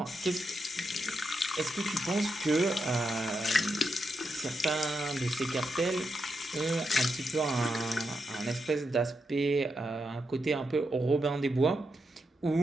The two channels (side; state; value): both; normal; correlation 0.84